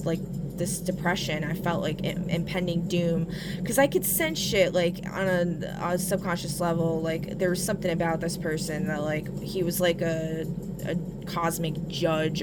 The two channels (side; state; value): both; identical; correlation 1.00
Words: like, this depression. I felt like impending doom, because I could sense shit, like, on a subconscious level. Like, there was something about this person that, like, he was like a cosmic judge